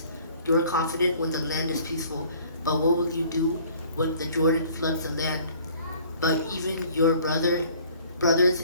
You are confident when the land is peaceful, but what will you do when the Jordan floods the land? But even your brothers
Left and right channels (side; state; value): both; inverted; correlation -0.54